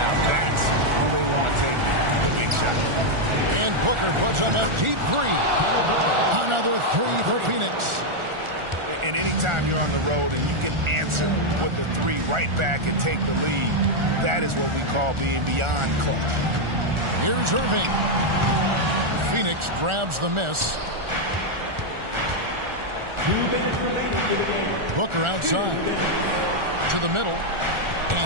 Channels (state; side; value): late; left; 1.4 ms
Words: That's who they want taking the big shot. And Booker puts up a deep three. Another three for Phoenix. And anytime you're on the road and you can answer with the three right back and take the lead, that is what we call being beyond clutch. Here's Irving. Phoenix grabs the miss. Booker outside. To the middle.